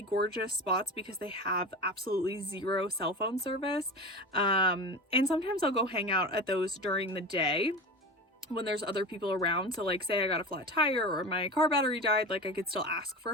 gorgeous spots because they have absolutely zero cell phone service, and sometimes I'll go hang out at those during the day when there's other people around. So like say I got a flat tire or my car battery died, like I could still ask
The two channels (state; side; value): normal; both; correlation 0.28